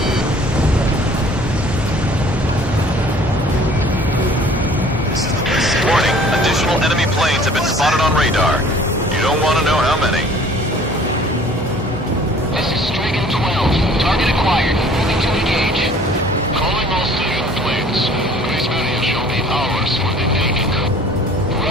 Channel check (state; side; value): normal; both; correlation 0.52